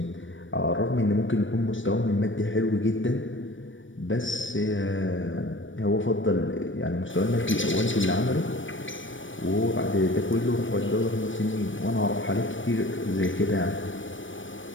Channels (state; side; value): late; right; 0.56 ms